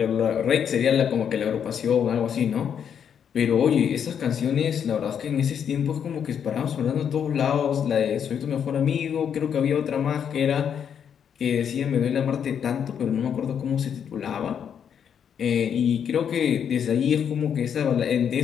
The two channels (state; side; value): quieter; right; 8.1 dB